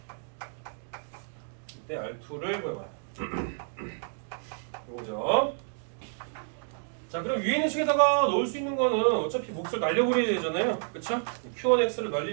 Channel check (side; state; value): left; silent; digital silence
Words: 이때 R2를 구해봐라. 이거죠. 자, 그럼 위에 있는 식에다가 넣을 수 있는 거는 어차피 몫을 날려버려야 되잖아요. 그쵸? Q1X를